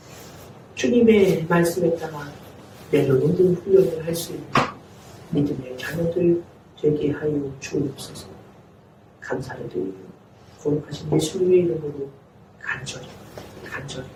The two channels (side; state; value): both; identical; correlation 1.00